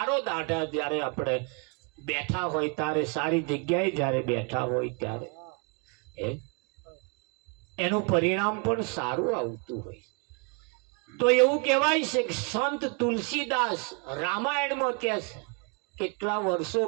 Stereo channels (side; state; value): left; quieter; 34.6 dB